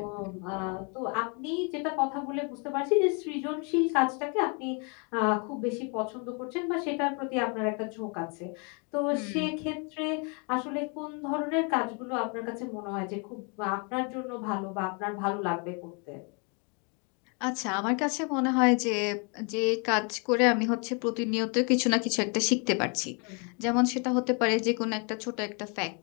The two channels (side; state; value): right; quieter; 35.1 dB